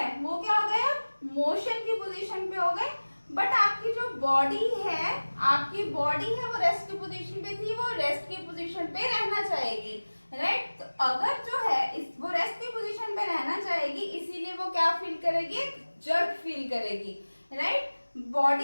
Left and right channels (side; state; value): both; inverted; correlation -1.00